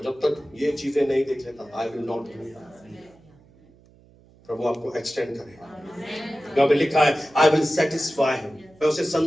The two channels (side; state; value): right; noise; hum, 28 dB below the sound